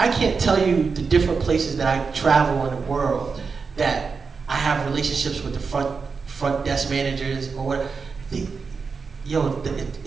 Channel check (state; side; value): quieter; left; 5.1 dB